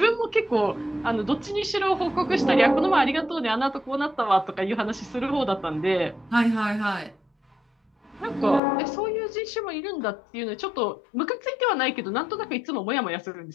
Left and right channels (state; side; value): drops out; right; at 8.6 s